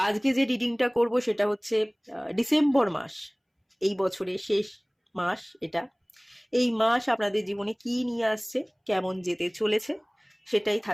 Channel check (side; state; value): both; identical; correlation 1.00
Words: আজকে যে রিডিংটা করব সেটা হচ্ছে ডিসেম্বর মাস, এই বছরের শেষ মাস এটা। এই মাস আপনাদের জীবনে কি নিয়ে আসছে, কেমন যেতে চলেছে, সেটাই